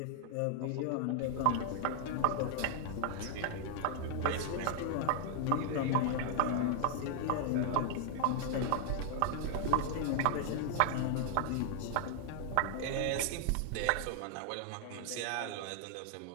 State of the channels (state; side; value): different; both; correlation 0.00